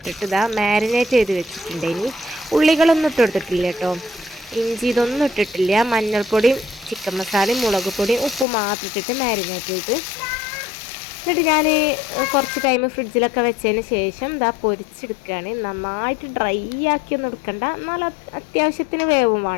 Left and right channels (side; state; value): right; drops out; at 8.5 s